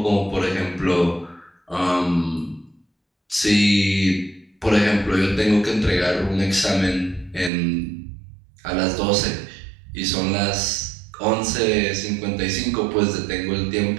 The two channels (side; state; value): left; drops out; at 7.5 s